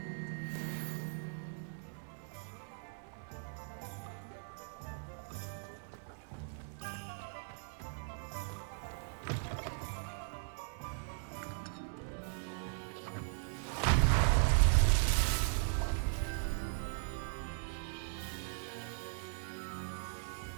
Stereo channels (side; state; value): left; silent; 52 dB below the other